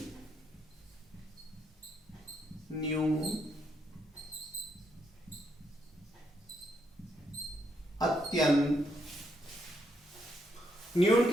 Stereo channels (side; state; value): both; normal; correlation 0.77